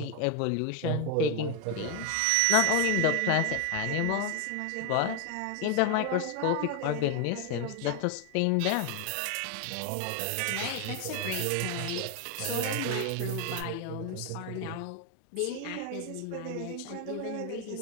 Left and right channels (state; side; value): different; both; correlation 0.01